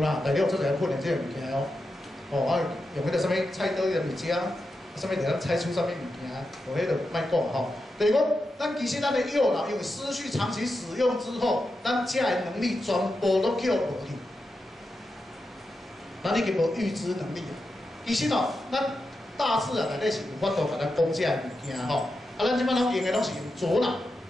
啦，内底有做一个训练即个物件哦。哦，啊用迄个啥物菜刀迄个物件，啥物会当猜出啥物物件，无迄个卖讲吼。就是讲，咱其实咱的右脑因为失去长期使用之后，咱遮的能力全部都叫无去，咱已经无预知能力了。其实哦，咱大自然内底是有法度甲咱讲遮的物件吼。啊，咱即摆拢用的拢是用左脑，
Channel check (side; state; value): both; normal; correlation 0.89